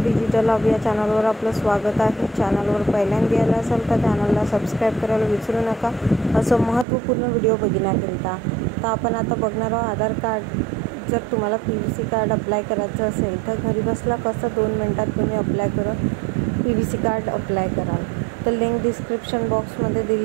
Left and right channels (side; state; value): left; drops out; at 6.9 s